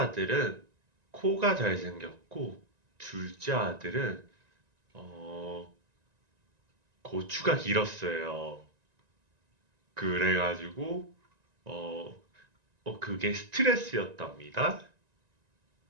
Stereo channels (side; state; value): left; late; 1.9 ms